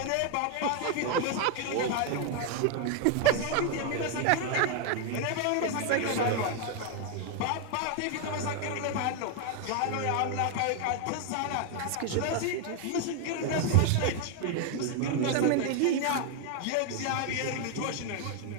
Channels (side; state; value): both; different; correlation 0.01